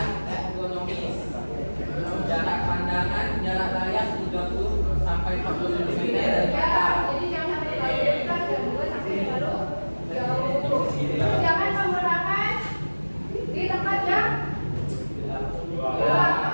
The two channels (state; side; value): inverted; both; correlation -1.00